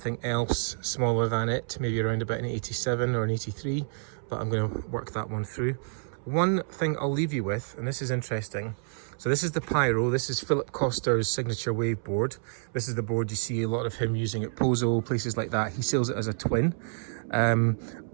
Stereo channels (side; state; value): left; silent; 59 dB below the other